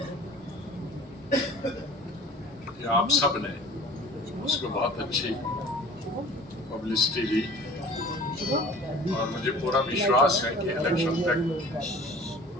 कि आप सब ने उसको बहुत अच्छी पब्लिसिटी दी। और मुझे पूरा विश्वास है कि इलेक्शन तक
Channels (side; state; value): both; normal; correlation 0.45